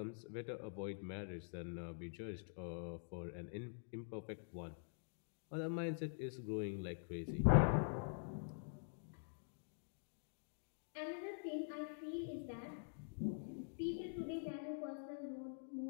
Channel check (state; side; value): silent; right; digital silence